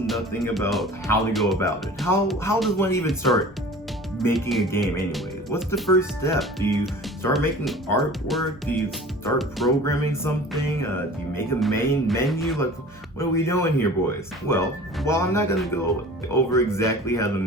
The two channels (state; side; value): normal; both; correlation 0.42